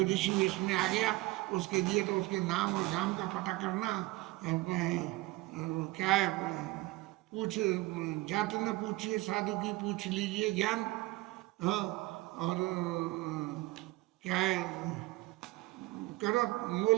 ऋषि इसमें आ गया उसके लिए तो उसके नाम और गांव का पता करना क्या है, पूछ जात न पूछिए साधु की पूछ लीजिए ज्ञान। हाँ, और क्या है, करो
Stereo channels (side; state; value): left; quieter; 20.0 dB